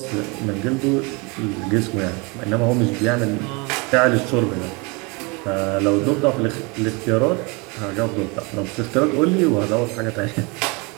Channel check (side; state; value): left; quieter; 28.9 dB